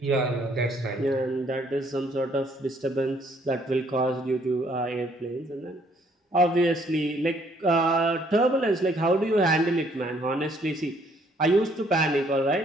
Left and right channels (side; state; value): both; normal; correlation 0.65